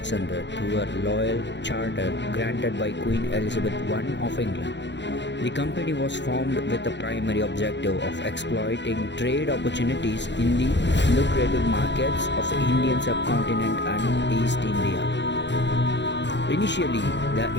through a royal charter granted by Queen Elizabeth I of England. The company was formed with the primary objective of exploiting trade opportunities in the lucrative markets of the Indian subcontinent and East India. Initially, the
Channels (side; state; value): right; late; 0.52 ms